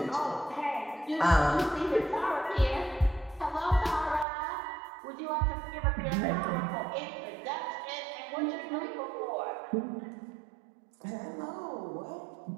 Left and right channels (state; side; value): drops out; left; at 4.2 s